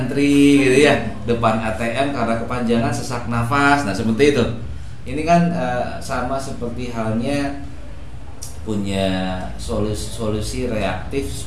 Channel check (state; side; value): identical; both; correlation 1.00